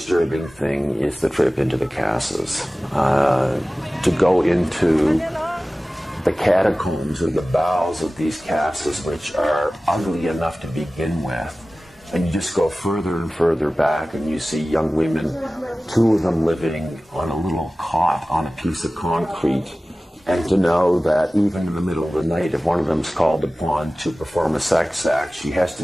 thing is the trip into the casas. To go into the catacombs or the bowels of these casas, which are ugly enough to begin with, and you just go further and further back and you see young women, 2 of them living on a little cot on a piece of concrete, and to know that even in the middle of the night, if one of them's called upon to perform a sex act, she has to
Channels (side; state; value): both; normal; correlation 0.97